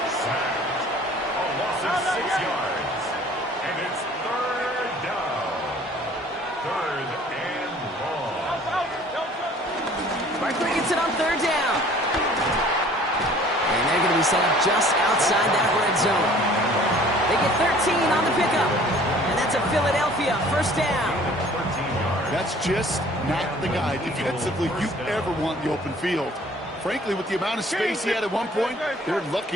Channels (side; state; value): both; normal; correlation 0.52